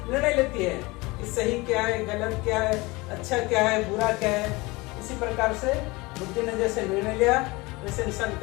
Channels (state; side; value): quieter; right; 23.4 dB